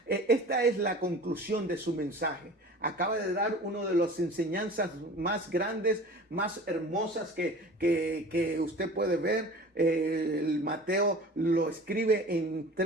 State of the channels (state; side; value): normal; both; correlation 0.40